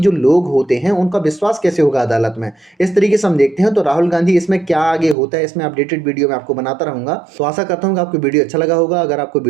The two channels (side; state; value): left; drops out; at 5.2 s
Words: लोग होते हैं उनका विश्वास कैसे होगा अदालत में। इस तरीके से हम देखते हैं। तो राहुल गांधी इसमें क्या आगे होता है, इसमें अपडेटेड वीडियो मैं आपको बनाता रहूंगा। तो आशा करता हूँ कि आपको वीडियो अच्छा लगा होगा। अगर आपको